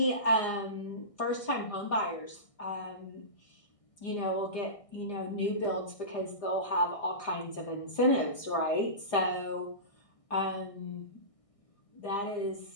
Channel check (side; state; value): right; late; 1.6 ms